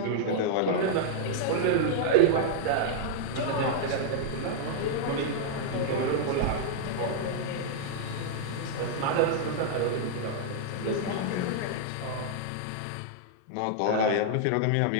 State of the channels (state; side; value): different; both; correlation -0.01